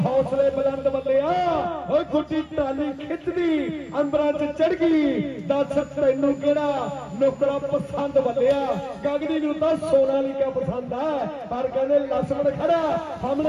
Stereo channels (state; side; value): identical; both; correlation 1.00